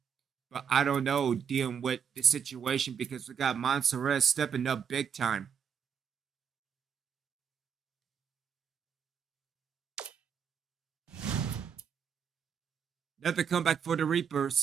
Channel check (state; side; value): quieter; left; 7.4 dB